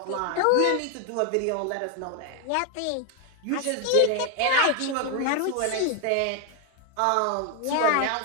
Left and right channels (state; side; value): different; both; correlation 0.01